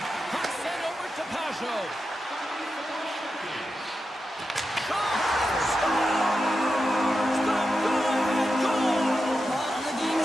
Puck sent over to Pajot. The game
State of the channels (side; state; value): both; normal; correlation 0.89